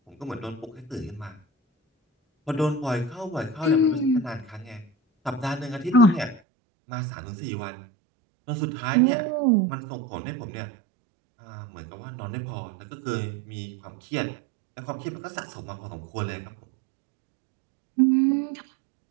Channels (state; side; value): drops out; left; at 6.4 s